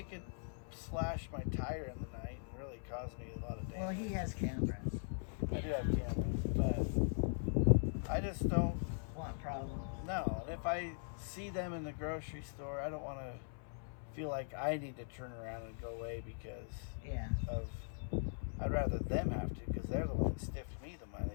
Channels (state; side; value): silent; right; 51 dB below the other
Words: could slash my tire in the night and really cause me a lot of damage. Well, he has cameras. I do have cameras, but I just don't. Want problems. No, and if I see them in the grocery store, I don't want to feel like I need to turn around and go away because Yeah. of. I'd rather them have to because they're the one that stiffed me the